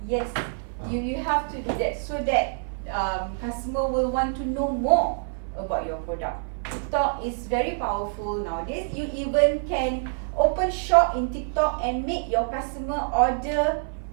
Yes. You have to do that so that customer will want to know more about your product. TikTok is very powerful nowadays. You even can open shop in TikTok and make your customer order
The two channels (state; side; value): silent; left; 55 dB below the other